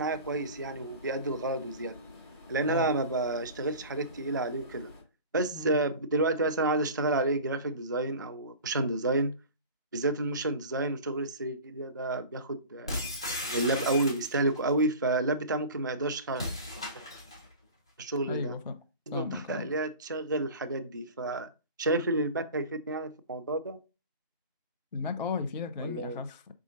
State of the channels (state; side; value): inverted; both; correlation -0.37